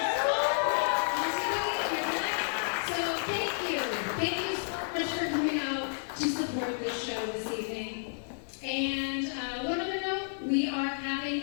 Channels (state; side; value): silent; right; digital silence